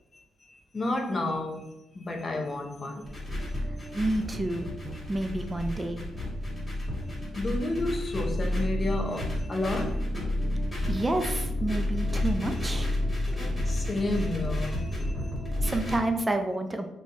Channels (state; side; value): normal; both; correlation 0.88